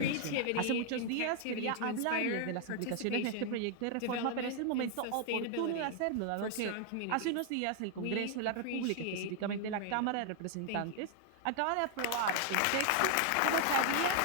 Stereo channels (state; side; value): different; both; correlation 0.00